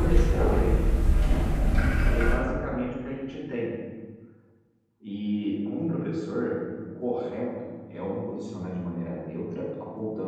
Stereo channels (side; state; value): both; identical; correlation 1.00